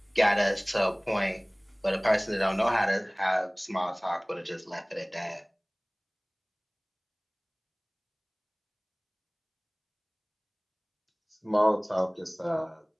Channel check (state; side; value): identical; both; correlation 1.00